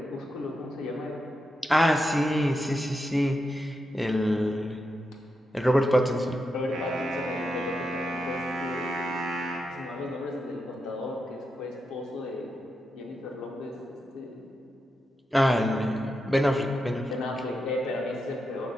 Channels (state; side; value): normal; both; correlation 0.86